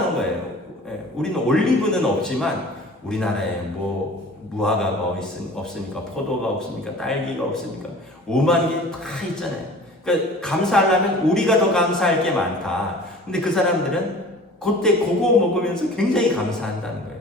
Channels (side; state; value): both; normal; correlation 0.44